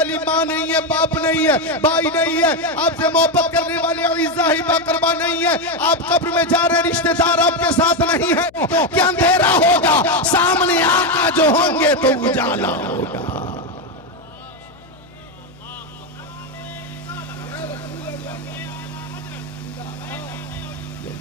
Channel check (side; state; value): left; noise; hum, 26 dB below the sound